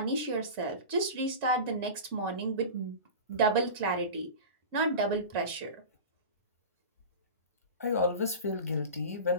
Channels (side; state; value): both; inverted; correlation -0.30